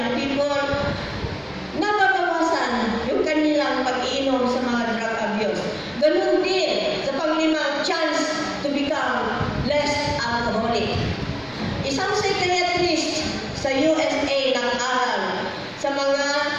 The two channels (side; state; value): both; identical; correlation 1.00